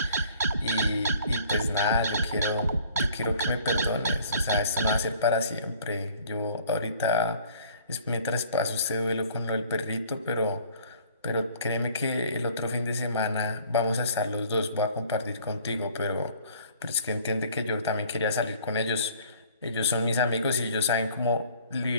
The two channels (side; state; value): both; inverted; correlation -0.54